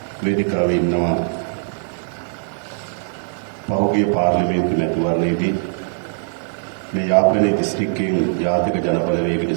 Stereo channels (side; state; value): left; silent; 55 dB below the other